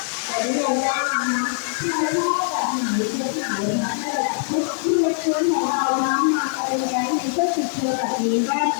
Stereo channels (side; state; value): right; silent; digital silence